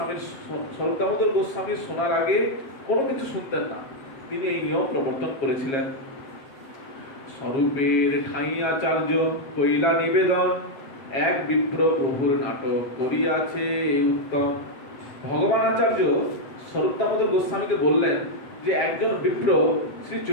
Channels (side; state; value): right; late; 7.4 ms